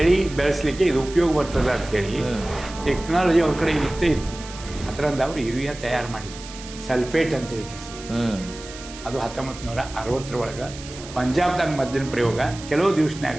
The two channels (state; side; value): noise; right; hiss, 15 dB below the sound